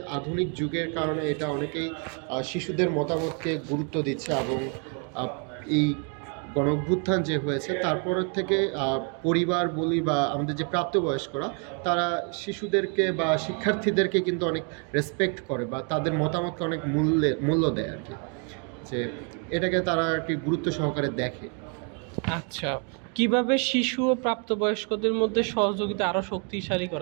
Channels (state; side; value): quieter; left; 39.3 dB